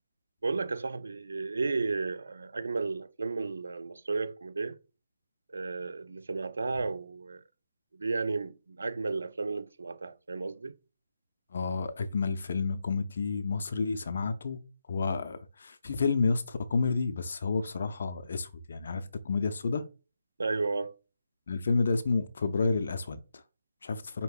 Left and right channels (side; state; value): both; inverted; correlation -0.86